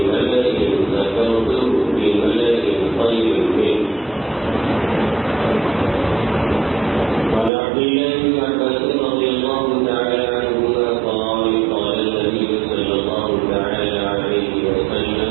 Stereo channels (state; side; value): drops out; left; at 7.5 s